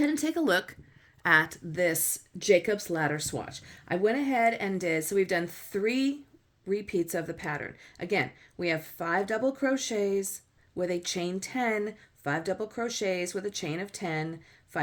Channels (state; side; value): identical; both; correlation 1.00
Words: and take a look at this Jacobs Ladder swatch. I went ahead and did, so we've done 3 repeats of the pattern. Again, we have 5 double crochets with a chain 10, 5 double crochets with a chain of 10,